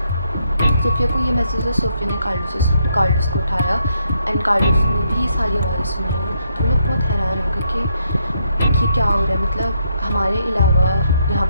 सोफिया को ये महसूस हुआ। सोफिया ने कार्लोस को उठाया एंड कार्लोस ने भी ये सारी आवाज़ें सुनी। वो लोग बहुत हैरान हो गए कि क्या हो रहा है, मतलब हमारे अलावा यहाँ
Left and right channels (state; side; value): inverted; both; correlation -0.75